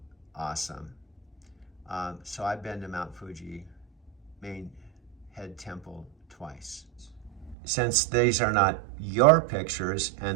awesome. So I've been to Mount Fuji main head temple twice. Since these are not your pictures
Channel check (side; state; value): left; drops out; at 7.6 s